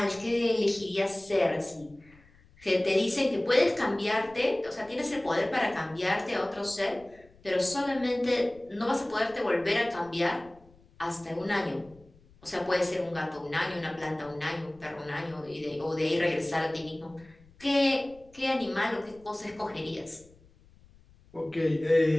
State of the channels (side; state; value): left; noise; rumble, 27 dB below the sound